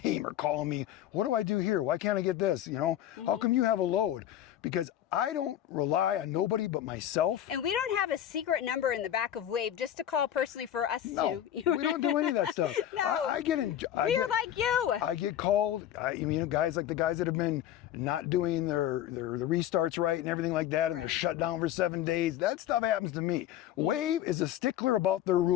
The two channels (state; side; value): quieter; right; 11.4 dB